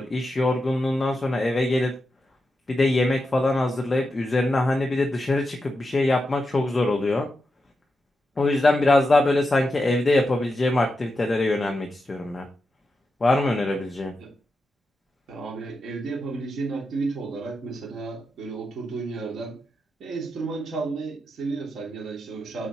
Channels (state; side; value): normal; both; correlation 0.88